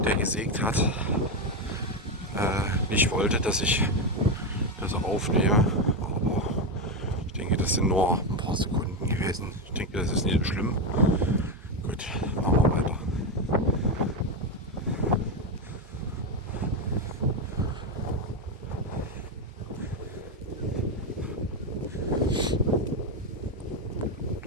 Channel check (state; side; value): normal; both; correlation 0.10